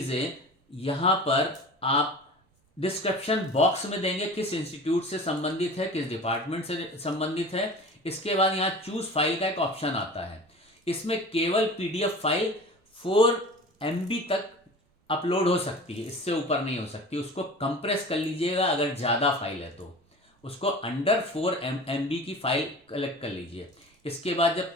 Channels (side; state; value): both; normal; correlation 0.38